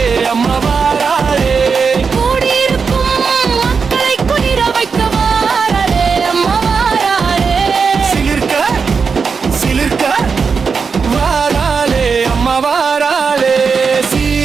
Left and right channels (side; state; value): left; quieter; 5.4 dB